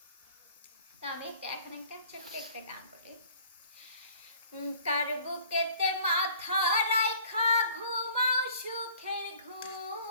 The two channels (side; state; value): both; inverted; correlation -0.53